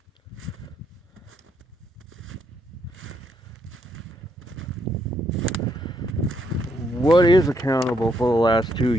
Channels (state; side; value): normal; both; correlation 0.75